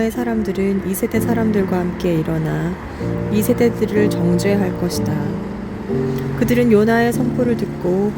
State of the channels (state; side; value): identical; both; correlation 1.00